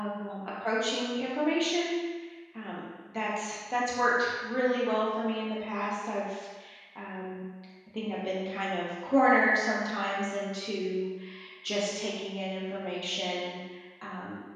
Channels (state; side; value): identical; both; correlation 1.00